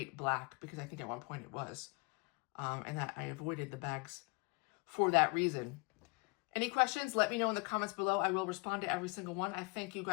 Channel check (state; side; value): quieter; right; 29.7 dB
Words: black, because I think at one point it was. And that I avoided the bags for that reason. Any questions? Let me know in the comments below. I will respond to every single one. I thank you